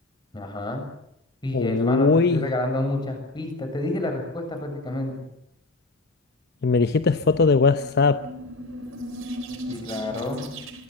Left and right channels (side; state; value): right; quieter; 3.2 dB